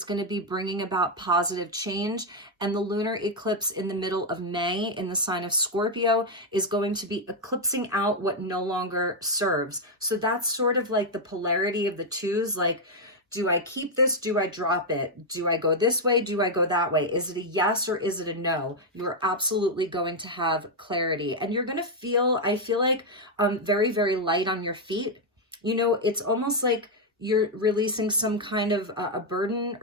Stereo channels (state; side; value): normal; both; correlation 0.01